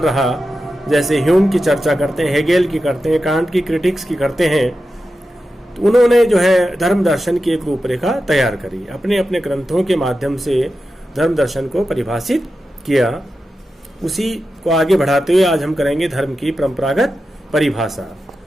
रहा। जैसे ह्यूम की चर्चा करते हैं, हेगेल की करते हैं, कांट की क्रिटिक्स की करते हैं। तो उन्होंने जो है धर्म दर्शन की एक रूपरेखा तैयार करी, अपने अपने ग्रंथों के माध्यम से धर्म दर्शन को परिभाषित किया। उसी को आगे बढ़ाते हुए आज हम करेंगे धर्म की परंपरागत परिभाषा।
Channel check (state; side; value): normal; both; correlation 0.91